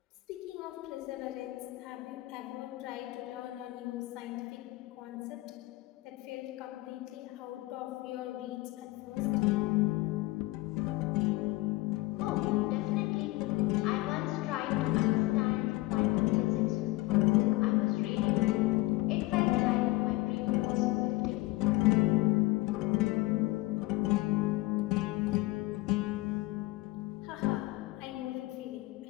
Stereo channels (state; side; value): quieter; right; 20.3 dB